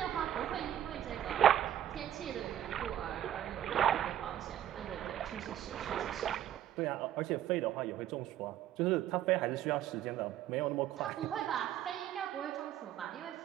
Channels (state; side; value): quieter; left; 11.5 dB